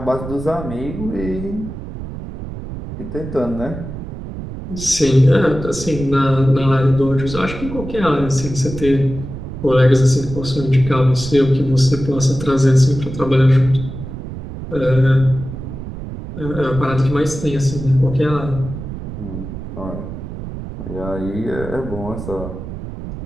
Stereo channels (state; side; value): noise; right; rumble, 9 dB below the sound